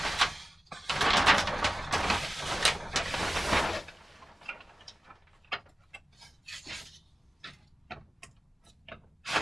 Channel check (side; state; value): both; normal; correlation 0.96